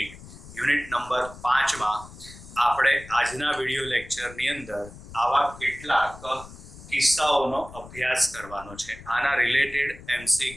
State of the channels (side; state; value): left; noise; rumble, 17 dB below the sound